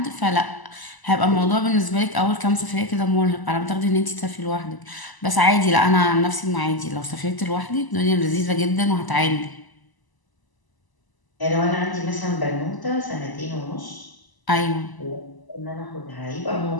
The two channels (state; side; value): late; right; 1.0 ms